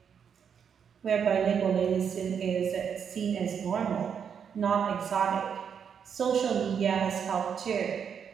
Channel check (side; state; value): left; quieter; 7.4 dB